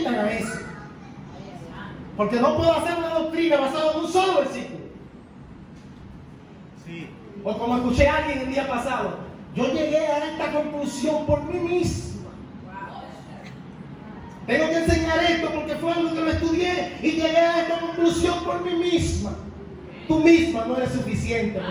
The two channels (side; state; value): both; identical; correlation 1.00